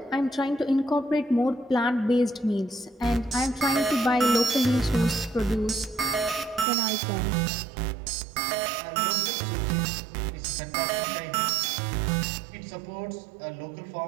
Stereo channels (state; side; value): drops out; left; at 6.7 s